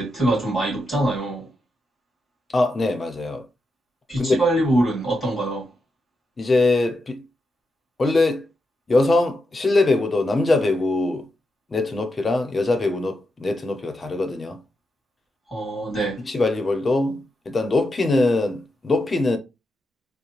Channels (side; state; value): both; normal; correlation 0.86